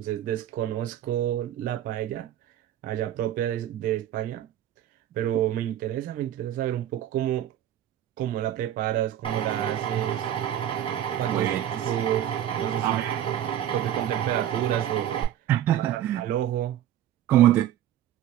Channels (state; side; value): quieter; left; 11.4 dB